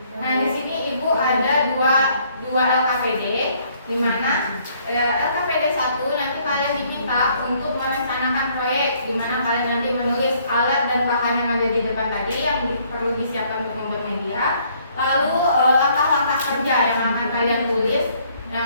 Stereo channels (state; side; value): inverted; both; correlation -0.64